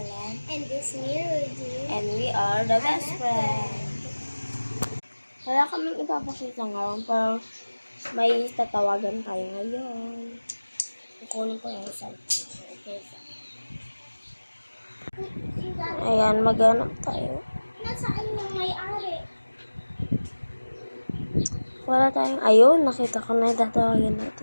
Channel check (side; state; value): both; inverted; correlation -1.00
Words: And this me, Rudy. And we are the best friends. Wala kaming ipapakita ngayon, pero may tatawagan tayo ngayon. Kukunin ko yung cellphone. Okay. Ayan, maghanap tayo. Nasaan yung may-ari? Wala tayong, ayun, nakita ko na yung tatawagan